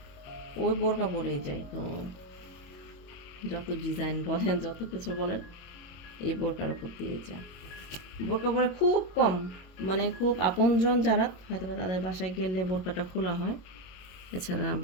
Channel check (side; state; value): right; late; 22 ms